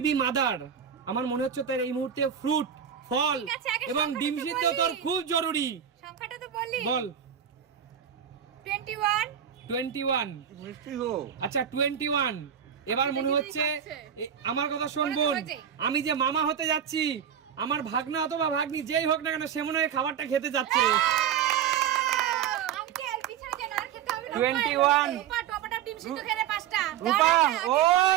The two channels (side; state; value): left; quieter; 8.8 dB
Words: মাদার, আমার মনে হচ্ছে তোর এই মুহূর্তে ফ্রুট, ফল ঠিক আছে, আগে এবং সংখ্যাটা ডিম তো সিদ্ধ বলি। তোর খুব জরুরি। সংখ্যাটা তো বলি। বল। 21। 21। মিষ্টি গো। আচ্ছা 21। এবার মনে হচ্ছে আমার কথা শোন মনে তো বোন, হয়েছে। আমি যে মামা হতে যাচ্ছি, আমার ভাগনা অথবা ভাগ্নি যেই হোক না কেন সে মনে হয় খাবারটা খেতে যাচ্ছে। আঙ্কেল পিছনে যেন আর খেতে হবে না। 21। রূপা টমেটো ডিম সিদ্ধ খেলে 5টা। রূপা ও